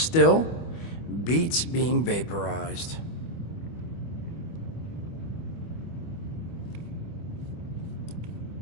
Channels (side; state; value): right; late; 25 ms